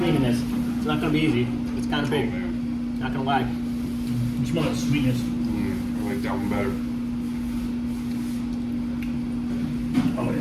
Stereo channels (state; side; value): identical; both; correlation 1.00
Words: this. It's not going to be easy. It's kind of big. Not going to lie. You smell that sweetness. I like that one better. Oh